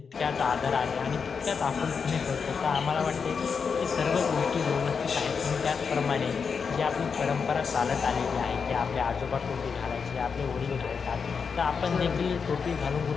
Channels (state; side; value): quieter; right; 5.8 dB